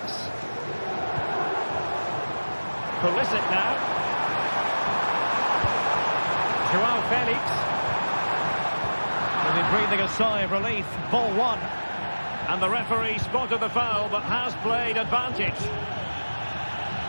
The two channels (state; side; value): inverted; both; correlation -1.00